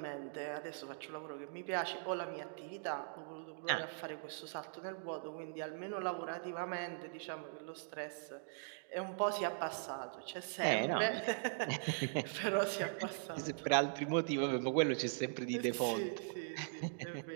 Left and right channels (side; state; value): left; silent; digital silence